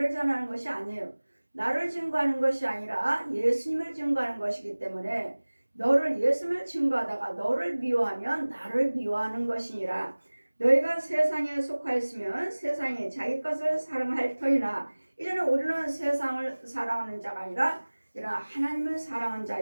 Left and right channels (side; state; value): both; inverted; correlation -1.00